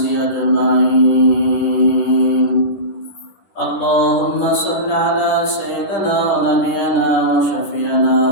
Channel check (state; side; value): late; right; 10 ms